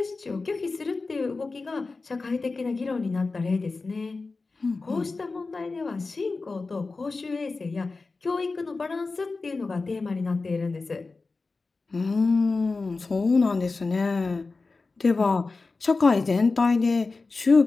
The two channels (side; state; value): right; quieter; 3.9 dB